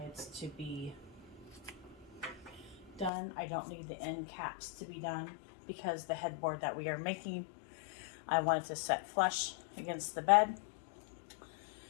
to be done. I don't need the end caps to be done because the headboard that we are making, I wanted to set flush against the bed.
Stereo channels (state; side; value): drops out; right; at 3.1 s